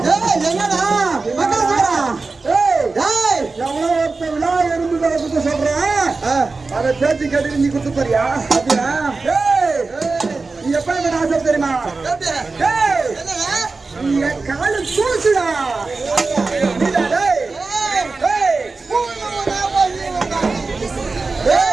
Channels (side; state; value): left; quieter; 3.9 dB